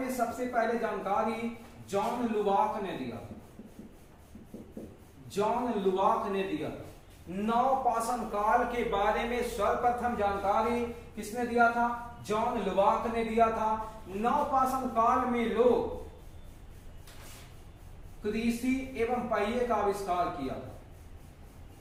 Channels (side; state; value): both; identical; correlation 1.00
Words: सबसे पहले जानकारी जॉन लुबाक ने दिया। नवपाषाण काल के बारे में सर्वप्रथम जानकारी किसने दिया था? जॉन लुबाक ने दिया था। नवपाषाण काल में लोग कृषि एवं पहिए का आविष्कार किया था।